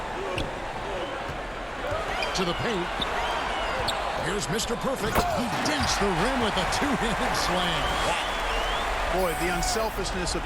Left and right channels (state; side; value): identical; both; correlation 1.00